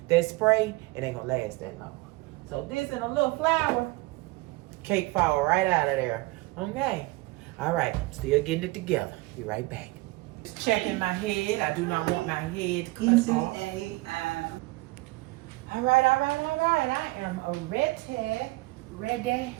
That spray, it ain't gonna last that long. So this and a little flour, cake fall right out of there. Okay. All right, still getting it together. Be right back. Checking my head. I do not want my head cut off. All right. I am ready.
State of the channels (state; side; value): quieter; left; 22.2 dB